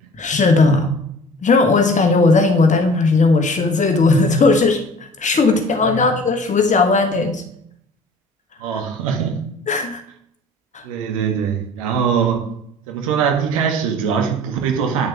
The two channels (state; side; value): normal; both; correlation 0.46